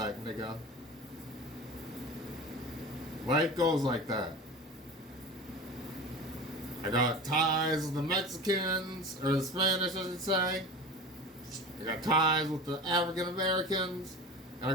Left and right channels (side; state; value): both; normal; correlation 0.33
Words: nigga. Life goes like that. I got ties with the Mexicans, or the Spanish, I should say. I got ties with the African Americans, and I